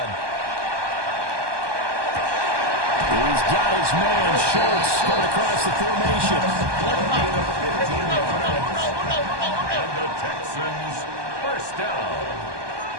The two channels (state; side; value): late; left; 1.2 ms